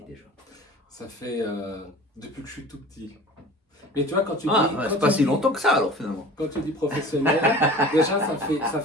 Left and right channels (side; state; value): both; normal; correlation 0.41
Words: déjà? Ça fait depuis que je suis tout petit. Mais tu vois, quand tu Ah, dis. ouais, Quand c'est pas tu si dis- longtemps que ça alors finalement. Quand tu dis professionnel, déjà ça